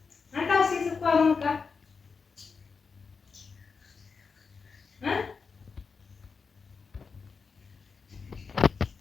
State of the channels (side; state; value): right; quieter; 5.1 dB